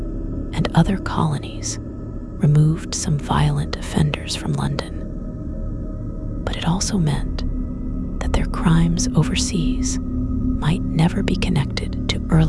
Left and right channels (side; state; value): both; identical; correlation 1.00